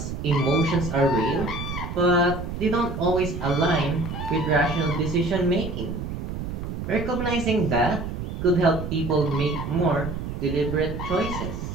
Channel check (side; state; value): right; noise; rumble, 6 dB below the sound